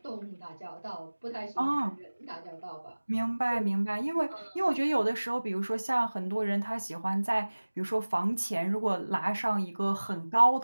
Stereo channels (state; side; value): inverted; both; correlation -1.00